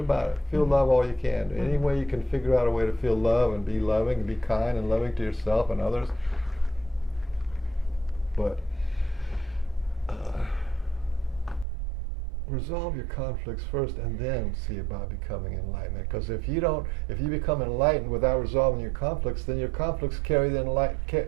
it. Feel love all you can. Any way you can figure out a way to feel love and be loving and be kind and loving to yourself and others. But resolve your conflicts first and then see about becoming enlightenment. Because if you become enlightened without resolving your conflicts, then your conflicts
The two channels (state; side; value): drops out; left; at 11.7 s